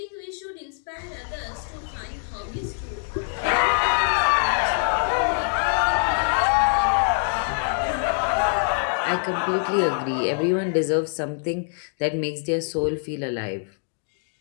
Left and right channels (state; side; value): silent; right; 62 dB below the other